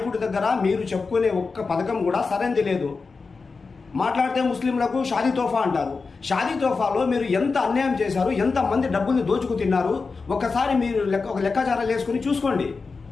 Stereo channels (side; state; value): right; quieter; 4.4 dB